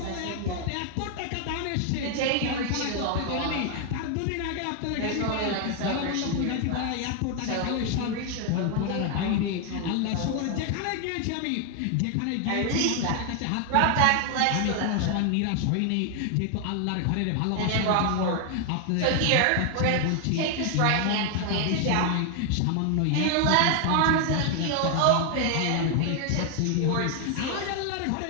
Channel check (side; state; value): both; different; correlation 0.00